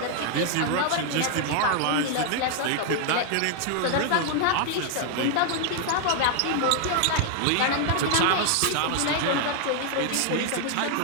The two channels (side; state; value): both; different; correlation 0.00